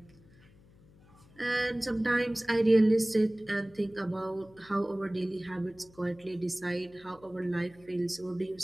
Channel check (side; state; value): left; noise; hum, 26 dB below the sound